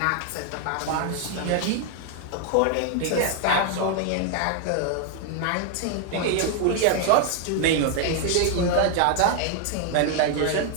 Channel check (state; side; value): different; both; correlation 0.00